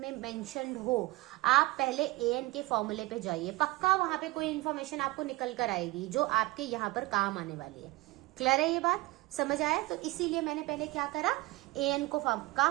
मेंशन्ड हो, आप पहले an के फॉर्मूले पे जाइए, पक्का वहां पे कोई इन्फॉर्मेशन आपको निकल कर आएगी जो आपके यहाँ पर काम आने वाली है। क्लियर है ये बात? समझ आया? तो इसीलिए मैंने पहले क्या करा, an का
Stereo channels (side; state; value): left; quieter; 20.8 dB